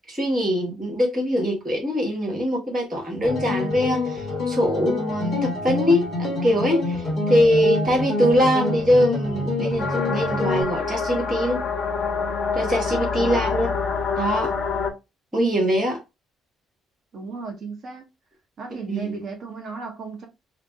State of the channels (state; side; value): normal; both; correlation 0.76